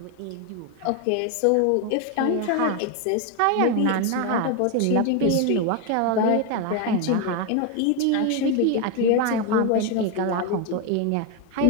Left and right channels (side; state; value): both; different; correlation 0.01